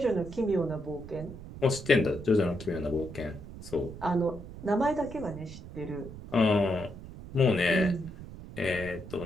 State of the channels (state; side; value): noise; right; rumble, 13 dB below the sound